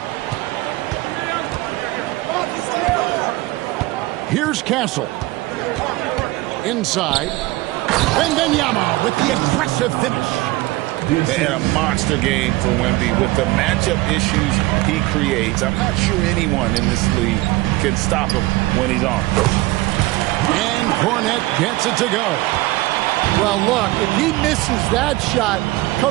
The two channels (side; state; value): left; quieter; 19.5 dB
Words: Here's Castle. Inside. Wembanyama with the aggressive finish. They had a monster game for Wemby with the matchup issues he creates. I'm not sure anyone in this league can stop him when he's on. And Cornet gets it to go. Well, look, if he misses that shot,